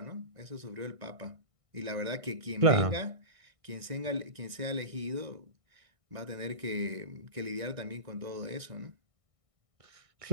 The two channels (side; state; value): left; late; 1.6 ms